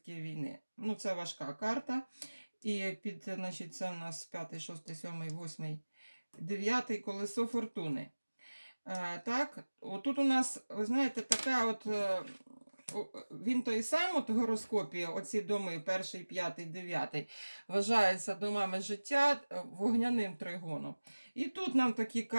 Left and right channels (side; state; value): both; inverted; correlation -1.00